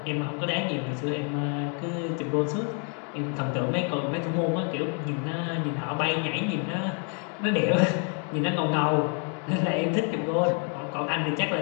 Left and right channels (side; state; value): right; quieter; 39.4 dB